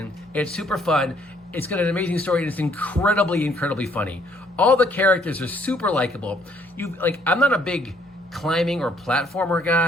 It's super fun. It's got an amazing story and it's incredibly, incredibly funny. All the characters are super likable. I'm not a big climbing or platformer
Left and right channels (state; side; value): normal; both; correlation 0.65